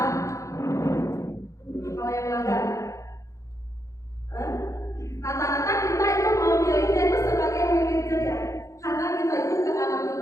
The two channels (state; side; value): late; right; 0.15 ms